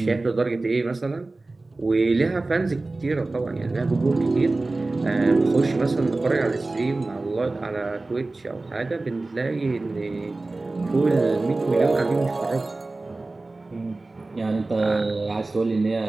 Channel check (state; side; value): quieter; left; 3.2 dB